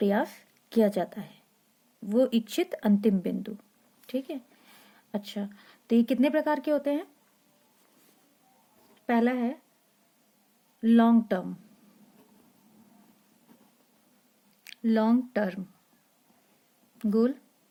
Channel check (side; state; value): both; identical; correlation 1.00